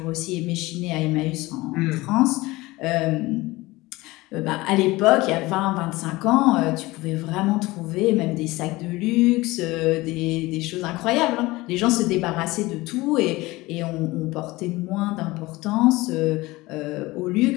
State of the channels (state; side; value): quieter; right; 20.4 dB